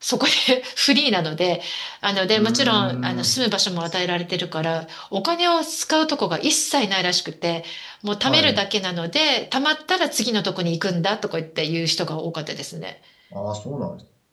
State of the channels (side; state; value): both; identical; correlation 1.00